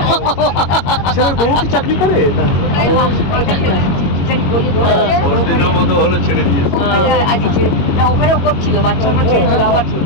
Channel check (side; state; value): right; late; 21 ms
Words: ছেলের বউ কি চাকরি করে? ছেড়ে দিয়েছে। ওখানেও করছিল, বাচ্চা ছেড়েছিল, আবার